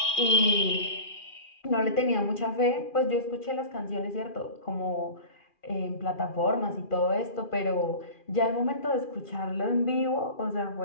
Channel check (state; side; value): late; right; 2.4 ms